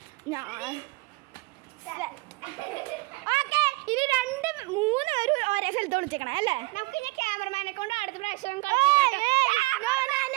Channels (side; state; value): left; quieter; 23.9 dB